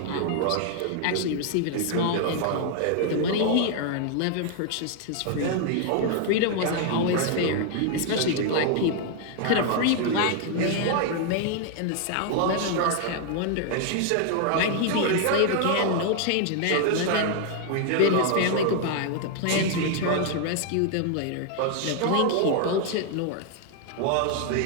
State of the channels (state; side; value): different; both; correlation 0.00